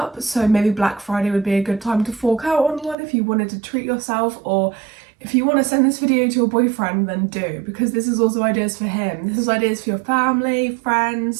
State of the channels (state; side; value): drops out; left; at 3.0 s